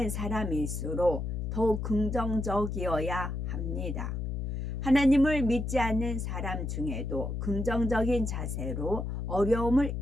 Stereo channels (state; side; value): noise; left; hum, 3 dB below the sound